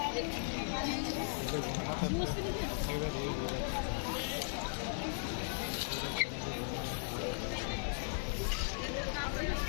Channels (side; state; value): right; silent; digital silence